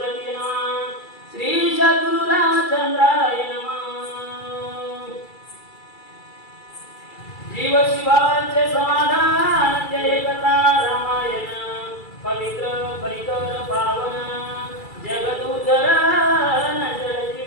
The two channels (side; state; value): right; late; 2.3 ms